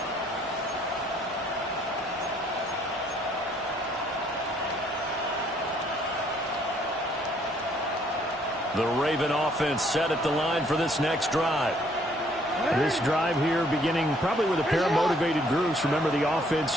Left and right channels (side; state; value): both; normal; correlation 0.64